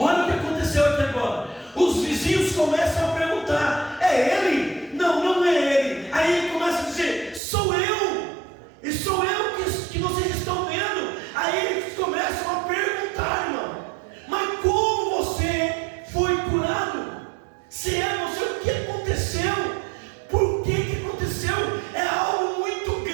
o que aconteceu aqui agora. Os vizinhos começam a perguntar: é ele? Não, não é ele. Aí ele começa a dizer: sou eu. E sou eu que vocês estão vendo. Aí eles começam a perguntar, irmão: mas como você foi curado? Se é você, o que aconteceu? Por que aconteceu? É algo muito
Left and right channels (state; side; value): drops out; left; at 7.4 s